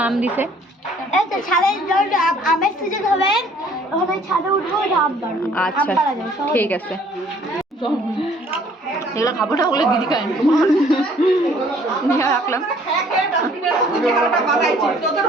মাম দিছে আমের সিজন হবে ওখানে ছাদে উঠবো আচ্ছা ঠিক আছে এগুলো খাবো না ওগুলো দিদি খায় নিয়ে রাখলাম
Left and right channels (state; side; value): normal; both; correlation 0.58